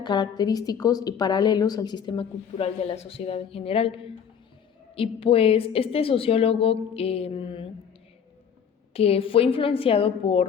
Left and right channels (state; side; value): quieter; right; 7.5 dB